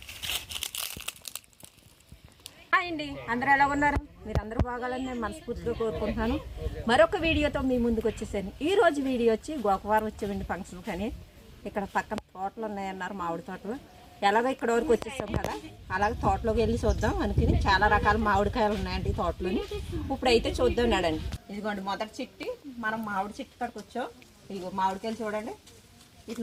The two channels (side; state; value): both; identical; correlation 1.00